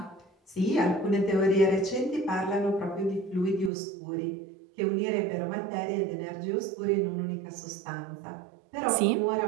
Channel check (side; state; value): left; drops out; at 3.7 s